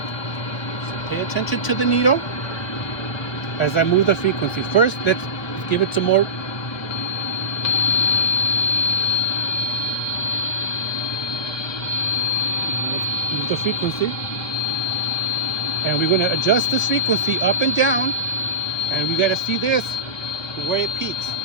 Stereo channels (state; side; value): late; right; 1.2 ms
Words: So pay attention to the needle as I move the frequency. First, let's give it some more. Let's move the frequency. And we're going to adjust this frequency up and down. And we got to see this, where it peaks.